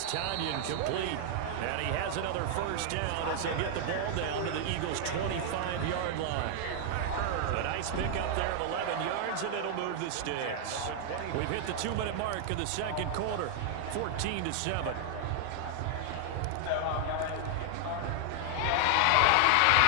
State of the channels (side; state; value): both; different; correlation 0.00